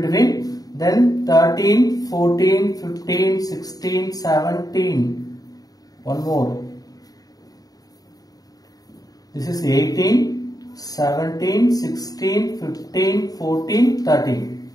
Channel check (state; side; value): late; right; 0.18 ms